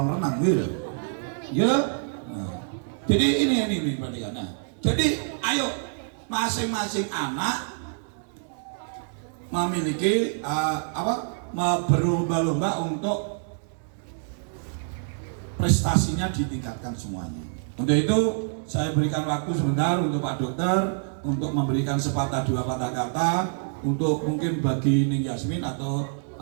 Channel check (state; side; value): silent; left; digital silence